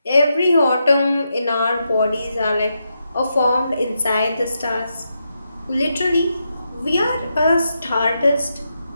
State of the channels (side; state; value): both; inverted; correlation -0.84